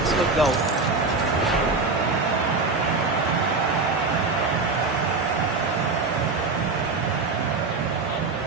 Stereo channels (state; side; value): quieter; left; 4.0 dB